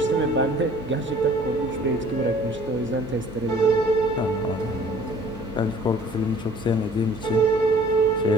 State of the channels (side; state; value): right; noise; hum, 18 dB below the sound